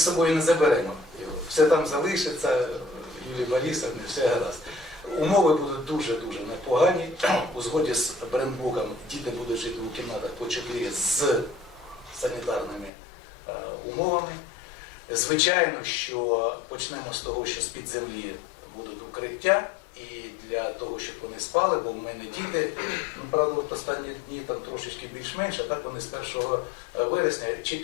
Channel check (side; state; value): right; drops out; at 12.9 s